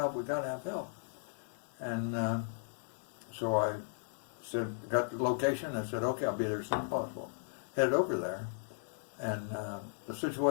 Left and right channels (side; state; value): right; silent; digital silence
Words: we got to have help. And so I said, got the location, I said, okay, I'll be there as soon as possible. Headed over there, and the